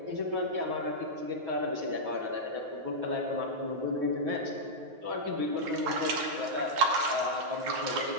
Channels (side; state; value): left; late; 9.4 ms